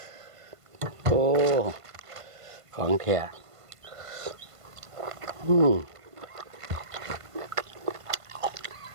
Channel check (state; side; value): late; left; 1.5 ms